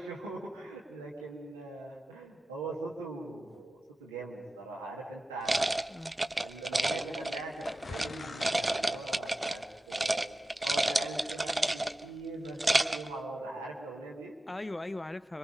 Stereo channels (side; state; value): both; normal; correlation 0.94